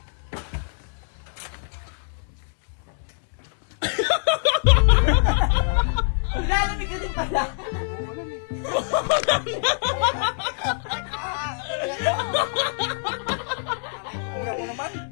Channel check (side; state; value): right; silent; digital silence